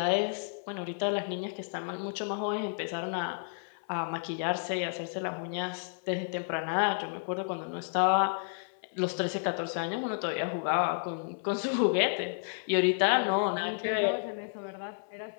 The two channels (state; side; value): silent; right; 57 dB below the other